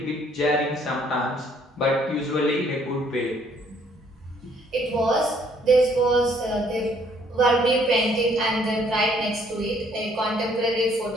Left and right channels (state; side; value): normal; both; correlation 0.64